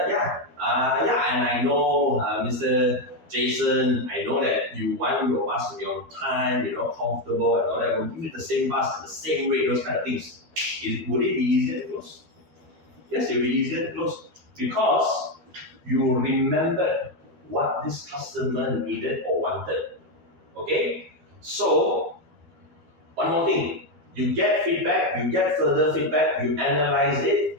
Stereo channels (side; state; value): left; late; 12 ms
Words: And I know, Mr. Jason, I know that you want your bus to be on time, comfortable and all that. We'll give you the same bus at the same rate, those kind of things. Would it be easier to close? Yes, it will be easier to close, because you remembered what this customer needed or wanted. Okay? So, one more thing. You get feedback, you get further feedback, you analyze it.